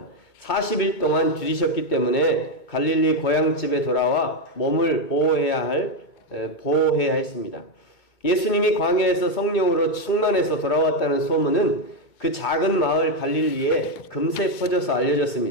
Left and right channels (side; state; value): right; late; 2.2 ms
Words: 40일 동안 들이셨기 때문에 갈릴리 고향집에 돌아와 몸을 보호해야 했습니다. 예수님이 광야에서 성령으로 충만해서 돌아왔다는 소문은 그 작은 마을 갈릴리에 금세 퍼져서